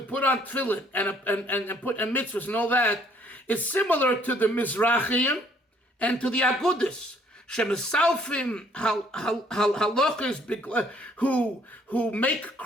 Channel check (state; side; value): normal; both; correlation 0.62